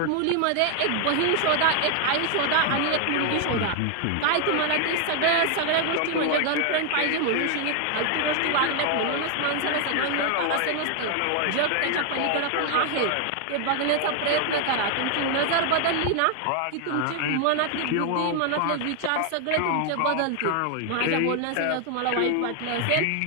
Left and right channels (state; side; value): different; both; correlation 0.00